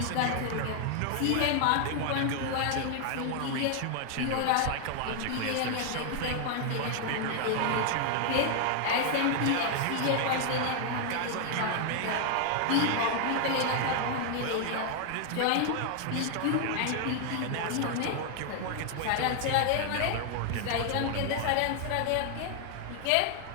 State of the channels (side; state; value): both; different; correlation 0.00